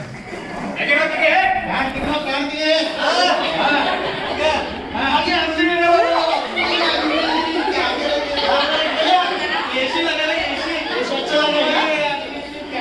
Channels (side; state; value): both; identical; correlation 1.00